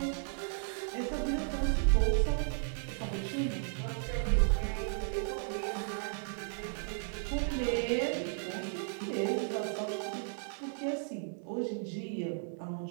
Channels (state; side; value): silent; left; 55 dB below the other